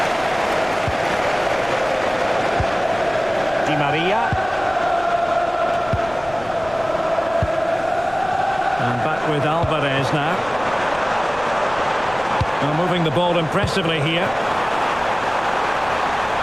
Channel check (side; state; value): left; noise; rumble, 18 dB below the sound